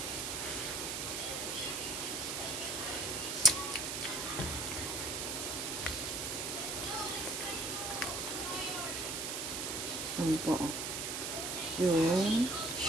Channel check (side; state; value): right; noise; hiss, 2 dB below the sound